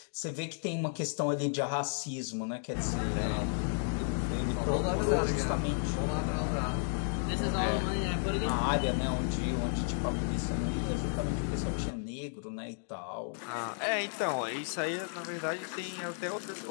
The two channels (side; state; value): right; silent; digital silence